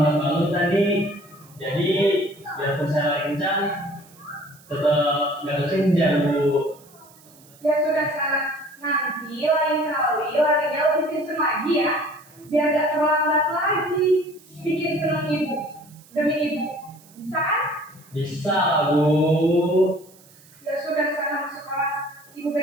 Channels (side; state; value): right; noise; hiss, 26 dB below the sound